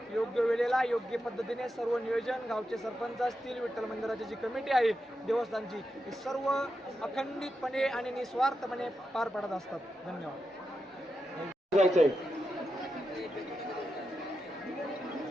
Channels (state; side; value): normal; both; correlation 0.88